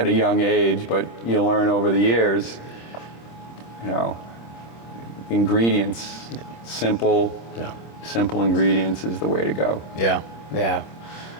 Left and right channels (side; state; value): right; late; 26 ms